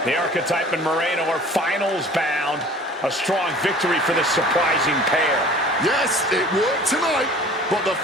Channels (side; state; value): both; normal; correlation 0.46